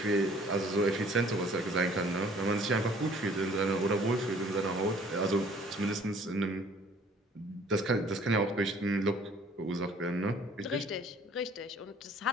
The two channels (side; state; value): both; normal; correlation 0.55